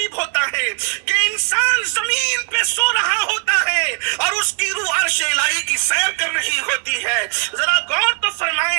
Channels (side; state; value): left; quieter; 36.8 dB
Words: ہوتا ہے کہ انسان زمین پہ سو رہا ہوتا ہے اور اس کی روح عرش الہی کی سیر کر رہی ہوتی ہے۔ ذرا غور تو